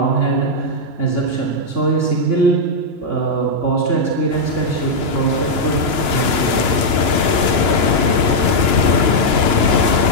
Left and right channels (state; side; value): late; left; 2.9 ms